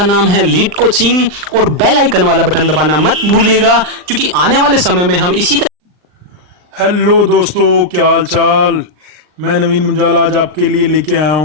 नाम है लीड कोचिंग और बेल आइकन वाला बटन दबाना मत भूलिएगा क्योंकि आने वाले समय में हम इसी हेलो दोस्तों, क्या हाल चाल। मैं नवीन मुंजाल आज आपके लिए लेके आया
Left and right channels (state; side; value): late; left; 39 ms